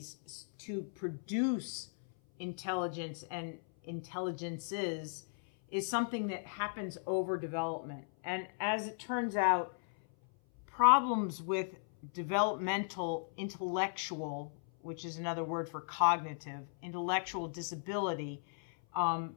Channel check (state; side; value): silent; right; 54 dB below the other